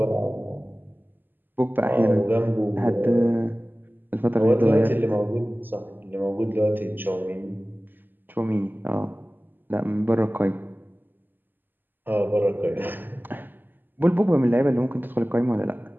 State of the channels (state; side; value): late; left; 0.092 ms